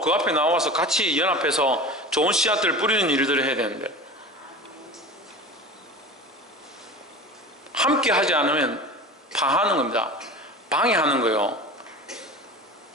앞에 나와서 같이 연합해서 좋은 씨앗들을 뿌리는 일들을 해야 되는데, 함께 하지 않으면 파하는 겁니다. 방해하는 거예요.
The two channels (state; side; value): normal; both; correlation 0.34